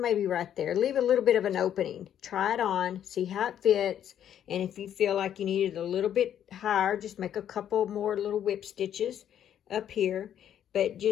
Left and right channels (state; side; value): quieter; right; 10.0 dB